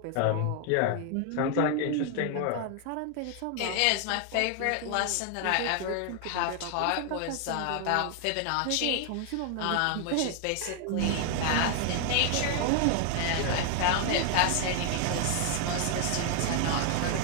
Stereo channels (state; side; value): different; both; correlation 0.00